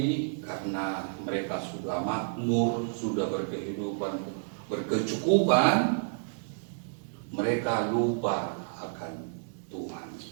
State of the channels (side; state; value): left; silent; digital silence